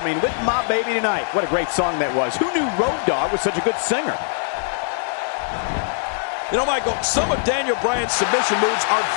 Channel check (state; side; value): silent; right; digital silence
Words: "With My Baby Tonight." What a great song that was. Who knew Road Dogg was such a good singer? You know, Michael, some of Daniel Bryan's submission moves are